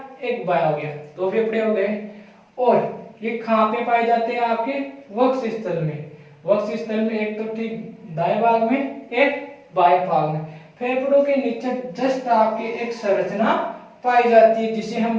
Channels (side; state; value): both; identical; correlation 1.00